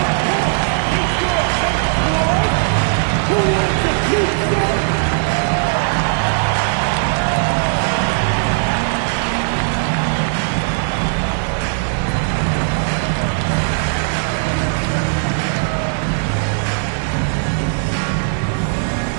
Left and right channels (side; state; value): left; silent; 65 dB below the other